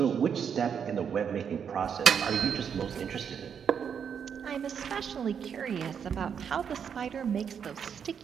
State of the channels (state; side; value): quieter; left; 7.4 dB